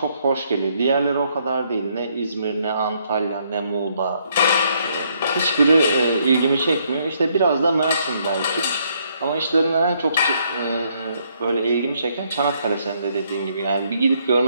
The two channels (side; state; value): both; inverted; correlation -0.71